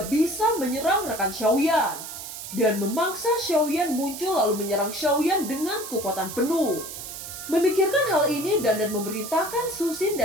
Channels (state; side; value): noise; right; hiss, 10 dB below the sound